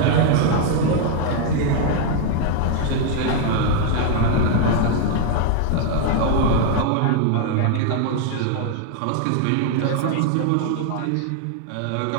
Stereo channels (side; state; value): both; different; correlation 0.00